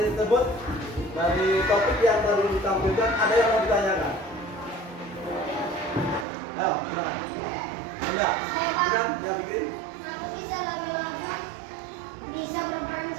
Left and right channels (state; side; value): drops out; left; at 6.2 s